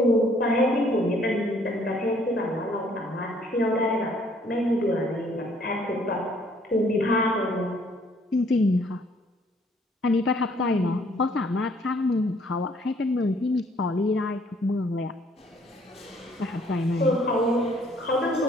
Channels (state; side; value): normal; both; correlation 0.63